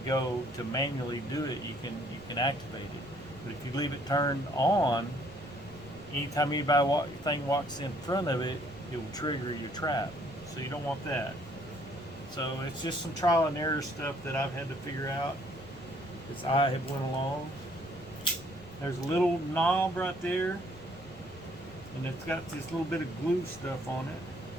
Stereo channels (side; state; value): left; noise; rumble, 20 dB below the sound